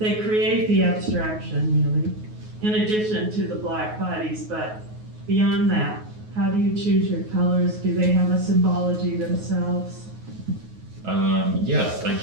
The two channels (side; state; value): left; late; 9.4 ms